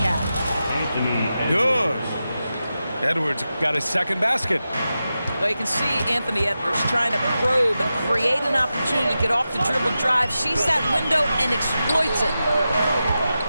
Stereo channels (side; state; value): both; inverted; correlation -0.91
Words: Good. Edwards got his second basket. Well, you can see Anthony Edwards trying to probe and create an opportunity to get off the dribble drive, sees that window and exploits it.